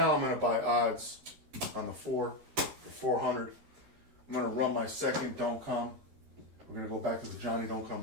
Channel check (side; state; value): left; late; 13 ms